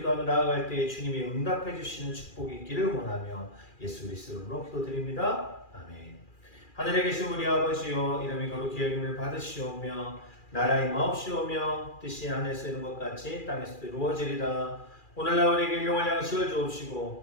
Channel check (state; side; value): late; right; 2.4 ms